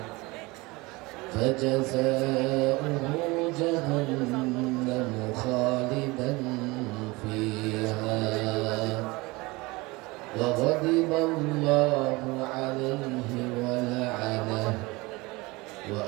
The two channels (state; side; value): quieter; left; 23.4 dB